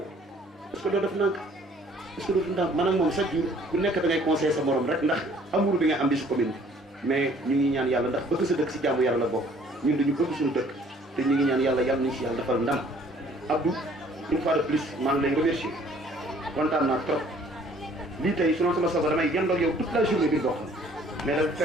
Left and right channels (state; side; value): normal; both; correlation 0.57